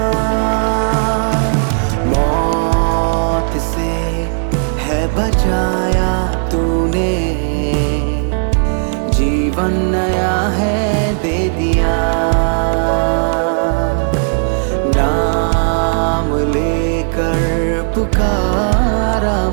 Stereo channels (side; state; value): left; silent; digital silence